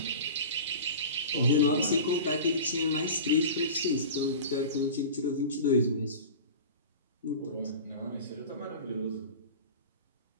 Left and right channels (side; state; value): both; inverted; correlation -0.34